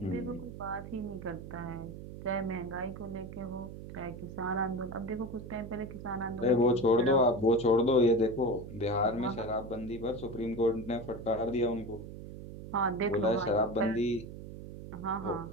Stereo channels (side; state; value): right; noise; hum, 11 dB below the sound